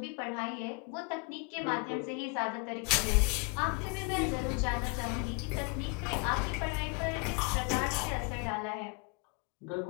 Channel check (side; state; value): right; quieter; 32.8 dB